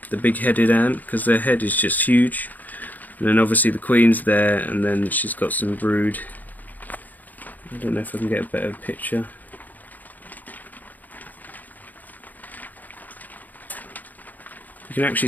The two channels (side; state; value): right; late; 0.082 ms